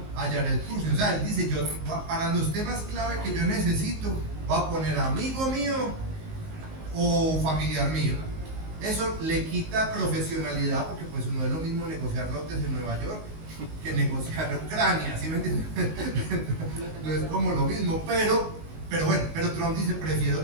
a Jared Kushner. O sea, él dice, yo para los temas clave que yo necesito voy a poner amigo mío o familiar mío. Eso le quita profesionalidad, porque pues no es lo mismo negociar lotes en Nueva York que negociar Ucrania, ¿sí me entienden? No es como lo mismo, pero bueno, pero Trump dice, prefiero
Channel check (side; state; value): left; late; 19 ms